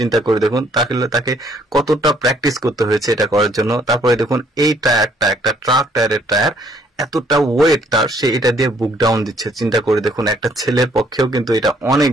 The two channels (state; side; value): normal; both; correlation 0.65